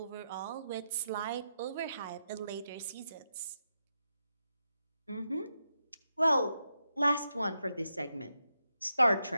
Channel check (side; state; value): both; inverted; correlation -0.85